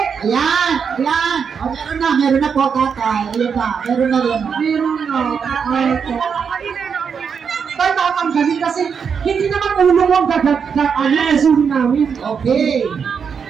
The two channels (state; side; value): quieter; left; 6.5 dB